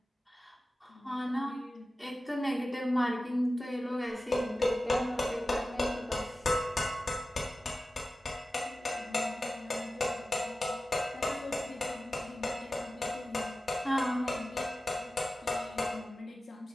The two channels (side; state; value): both; normal; correlation 0.95